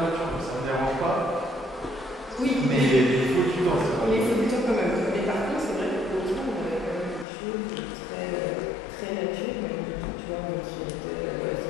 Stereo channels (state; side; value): drops out; right; at 7.2 s